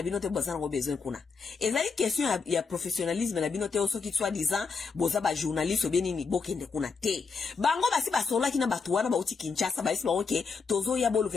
bino te bazana ko besoin kuna ezali question ya professionnalisme na bino te osoki soit disant boza ba journaliste obeni ni bokende kuna te bango basi basola kina batu wana ba uti Kinshasa ba isi ba oke tozo ya bolu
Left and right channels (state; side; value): quieter; right; 5.0 dB